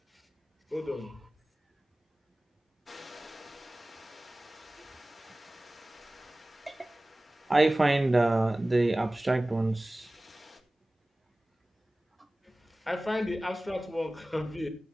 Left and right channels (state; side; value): normal; both; correlation 0.98